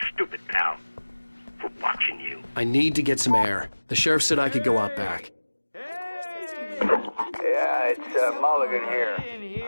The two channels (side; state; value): both; inverted; correlation -1.00